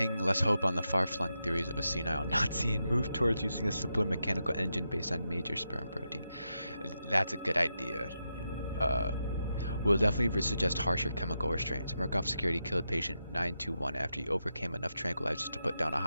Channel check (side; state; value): both; inverted; correlation -0.86